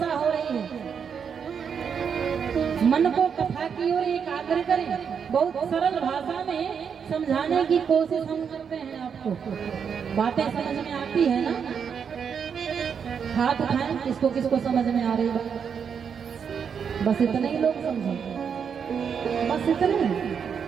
हो रही है, मन को कथा की ओर एकाग्र करें। बहुत सरल भाषा में समझाने की कोशिश हम करते हैं आपको, बातें समझ में आती है ना? हाथ उठाएं किसको किसको समझ में आ रही बात, बस इतने ही लोग समझे, बस इतने।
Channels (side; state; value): left; quieter; 7.0 dB